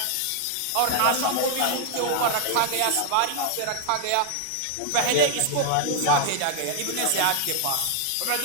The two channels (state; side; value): different; both; correlation 0.00